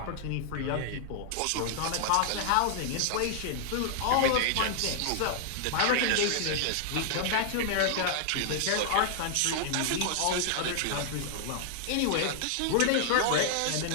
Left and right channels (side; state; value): both; different; correlation -0.01